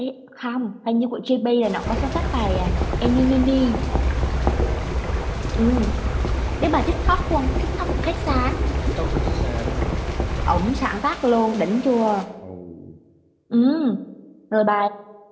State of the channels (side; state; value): both; identical; correlation 1.00